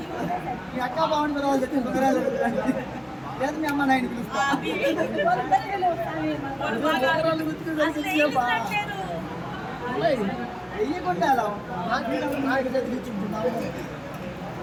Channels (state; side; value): identical; both; correlation 1.00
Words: మీ అక్క బాగుండి పిల్లలు తెచ్చి లేదు మీ అమ్మ నాయన పిలుస్తా వెయ్యకుండా అలా నాకు